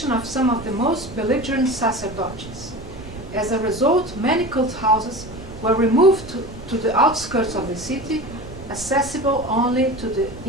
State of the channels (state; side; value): noise; right; rumble, 15 dB below the sound